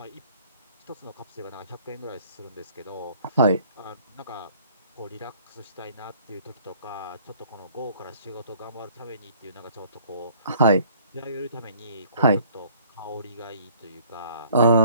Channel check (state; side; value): inverted; both; correlation -0.56